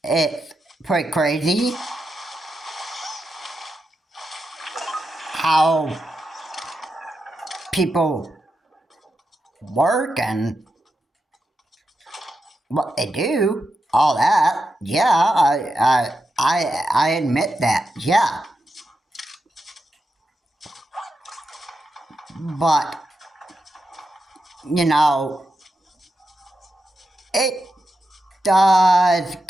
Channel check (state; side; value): normal; both; correlation 0.87